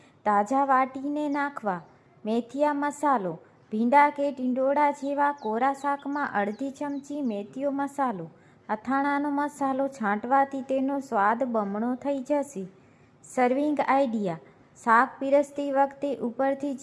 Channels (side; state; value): both; identical; correlation 1.00